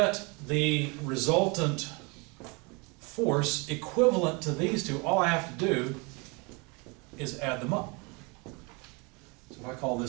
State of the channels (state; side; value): quieter; left; 29.5 dB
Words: the resultant force equivalent to these two, all I have to do is add them up. So if I call